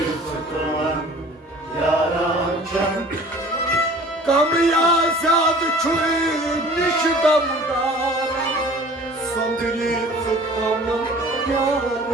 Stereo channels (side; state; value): both; normal; correlation 0.47